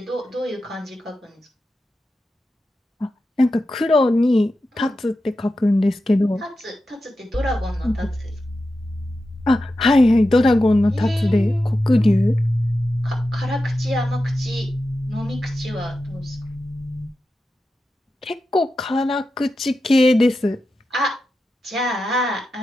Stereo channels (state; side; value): normal; both; correlation 0.91